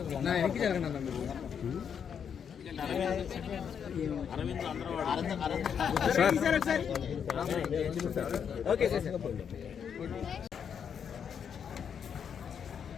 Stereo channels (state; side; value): quieter; right; 7.6 dB